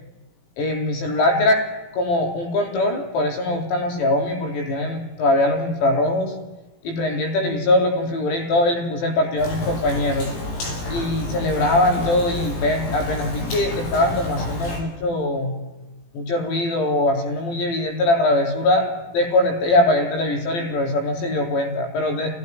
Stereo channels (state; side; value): late; right; 18 ms